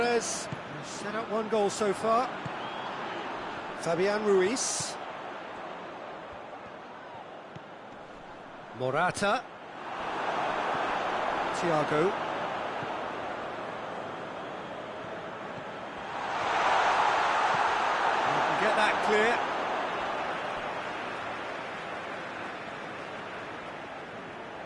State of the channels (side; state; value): both; identical; correlation 1.00